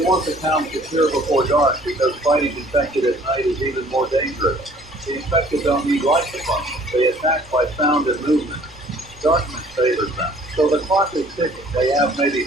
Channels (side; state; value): both; normal; correlation 0.55